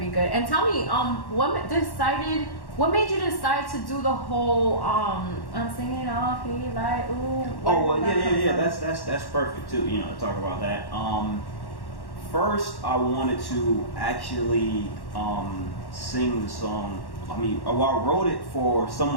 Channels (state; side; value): late; right; 1.1 ms